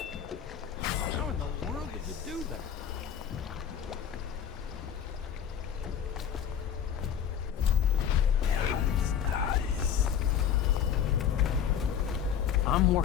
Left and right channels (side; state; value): right; quieter; 8.5 dB